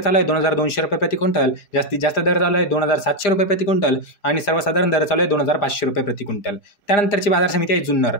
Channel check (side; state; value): right; late; 5.0 ms